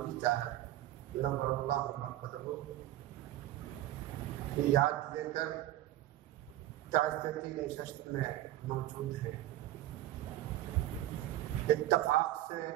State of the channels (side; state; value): left; quieter; 14.4 dB